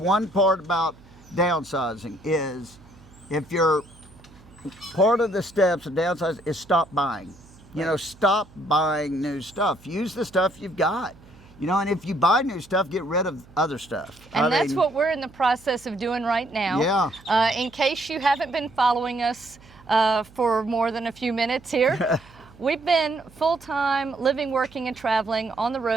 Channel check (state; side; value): noise; right; hum, 24 dB below the sound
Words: part about downsizing, is if you're part of the steps of downsizing is stop buying. You know, stop buying new stuff. Use the stuff you've got. You know, and if you buy new stuff, get rid of other stuff. And that's what we're in the process of doing right now. Yeah. In case you haven't been following us for more than a few minutes here, we've been full-time living, working, and traveling on the